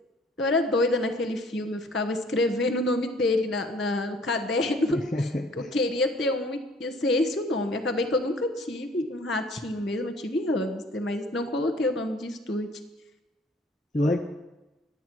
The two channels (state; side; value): normal; both; correlation 0.55